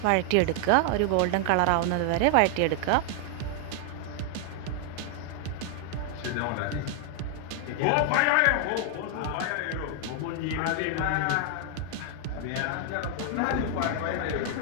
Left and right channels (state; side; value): different; both; correlation 0.00